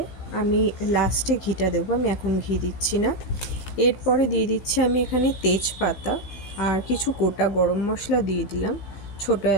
আমি লাস্টে ঘিটা দেবো, আমি এখন ঘি দিচ্ছি না। এরপরে দিয়ে দিচ্ছি আমি এখানে তেজপাতা আর কিছু গোটা গরম মশলা দিয়ে দিলাম। ছোটো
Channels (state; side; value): late; right; 15 ms